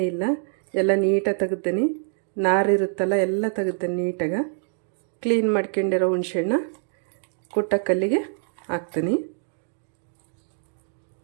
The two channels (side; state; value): left; silent; 56 dB below the other